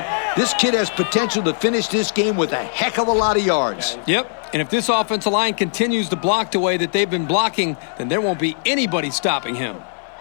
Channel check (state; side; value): silent; right; digital silence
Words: This kid has potential to finish this game with a heck of a lot of yards. Yep, and if this offensive line continues to block the way that they've been blocking, then there won't be anybody stopping him.